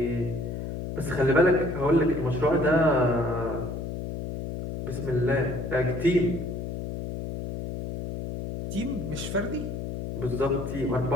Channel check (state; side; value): noise; left; hum, 6 dB below the sound